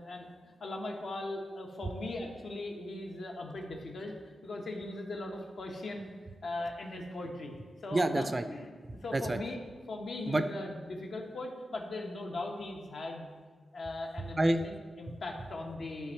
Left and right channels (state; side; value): normal; both; correlation 0.91